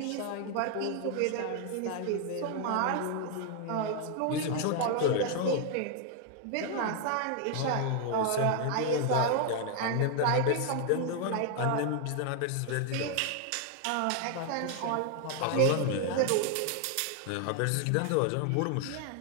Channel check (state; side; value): different; both; correlation 0.00